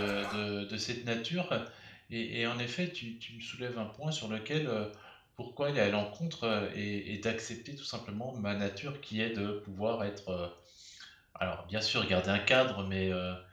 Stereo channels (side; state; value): both; identical; correlation 1.00